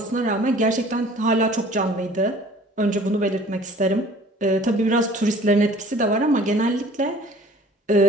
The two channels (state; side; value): normal; both; correlation 0.51